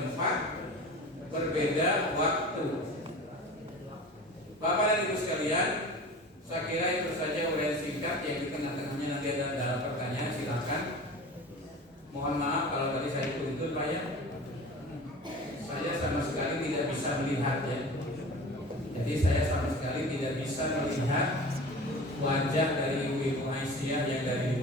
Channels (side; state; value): both; normal; correlation 0.37